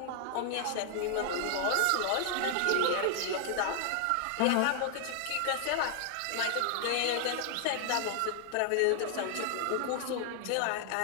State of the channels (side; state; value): both; different; correlation 0.00